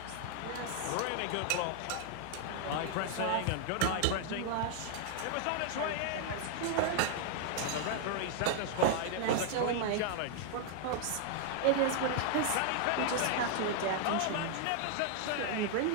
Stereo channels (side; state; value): both; different; correlation 0.00